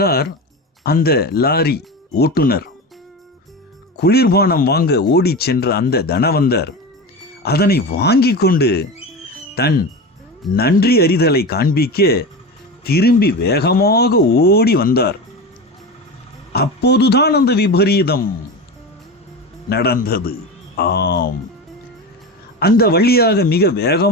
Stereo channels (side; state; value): both; normal; correlation 0.25